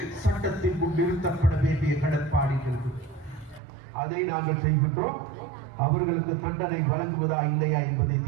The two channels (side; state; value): left; drops out; at 3.6 s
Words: சட்டத்தின் முன் நிறுத்தப்பட வேண்டிய கடப்பாடுகள் அதை நாங்கள் செய்கின்றோம். அவர்களுக்கு தண்டனை வழங்குவதா இல்லையா என்பதை